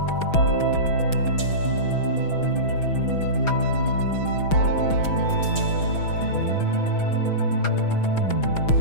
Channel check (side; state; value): right; late; 6.2 ms